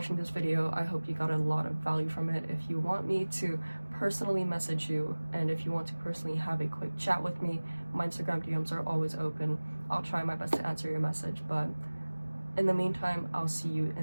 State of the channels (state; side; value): inverted; both; correlation -1.00